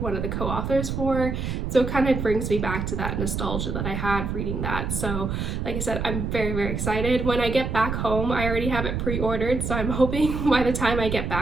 of the co-authors for, so it kind of brings me back to that nostalgia that I had reading that. So like I said, I'm very, very excited. When I get back home, I already have it pre-ordered, so I'm hoping by the time I get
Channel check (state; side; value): noise; right; rumble, 3 dB below the sound